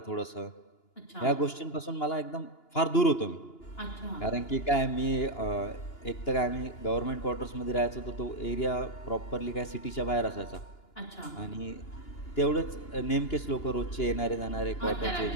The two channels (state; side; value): late; right; 2.9 ms